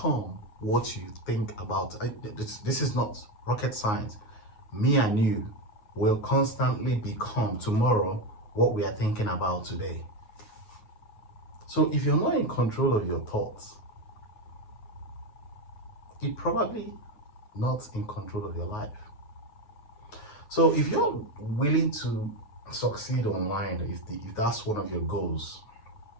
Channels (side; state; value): right; late; 9.4 ms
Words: what you think about. This is not rocket science. Me and you will constantly become tomorrow what we are thinking about today. So if you're not in control of your thoughts, you're probably not in control of your life. So if you're willing to succeed online, if that's one of your goals,